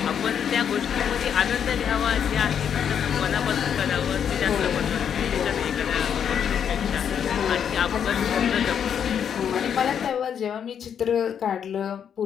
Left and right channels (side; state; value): right; quieter; 8.2 dB